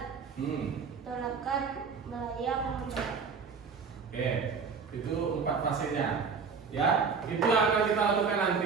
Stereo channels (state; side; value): quieter; left; 5.5 dB